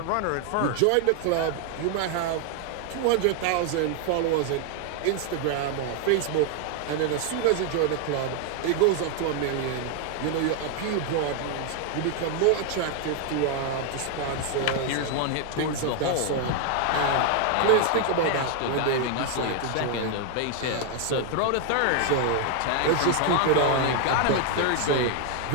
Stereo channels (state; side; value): different; both; correlation 0.00